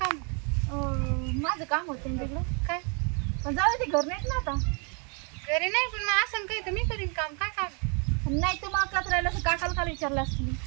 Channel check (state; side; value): quieter; left; 35.5 dB